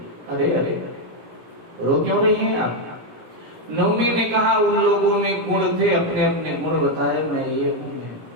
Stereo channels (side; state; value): left; late; 17 ms